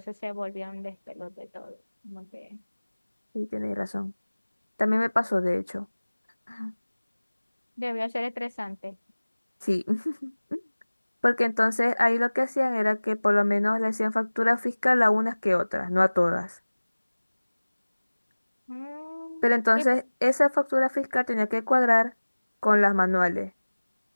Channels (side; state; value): both; inverted; correlation -1.00